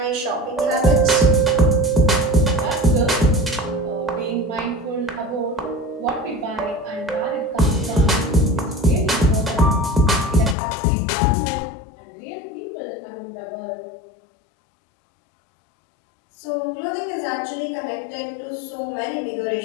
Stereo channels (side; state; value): right; drops out; at 10.6 s